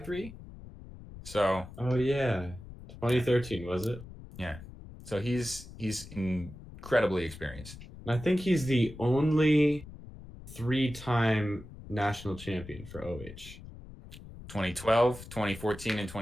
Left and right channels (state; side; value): noise; left; rumble, 15 dB below the sound